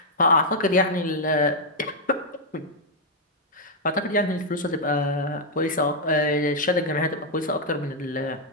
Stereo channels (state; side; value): normal; both; correlation -0.03